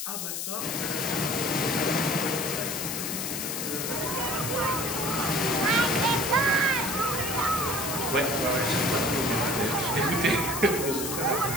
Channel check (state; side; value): noise; left; hiss, 4 dB below the sound